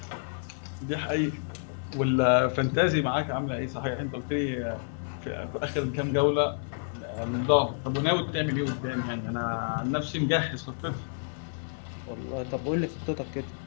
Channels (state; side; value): silent; right; digital silence